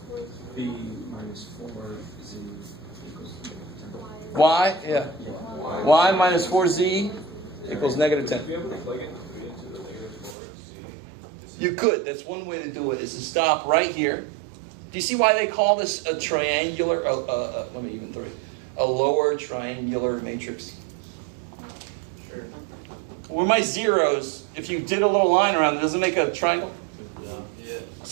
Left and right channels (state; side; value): drops out; left; at 10.4 s